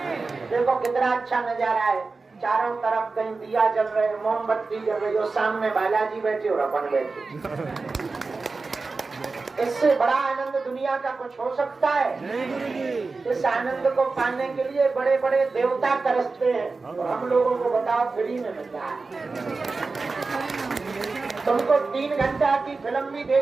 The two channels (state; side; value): quieter; left; 4.0 dB